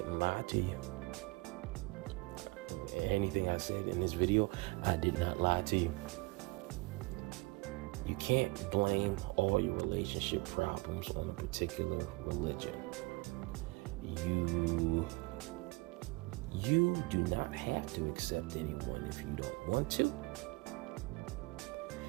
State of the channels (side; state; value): left; quieter; 24.8 dB